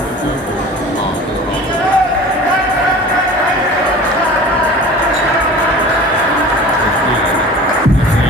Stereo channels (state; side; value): normal; both; correlation 0.40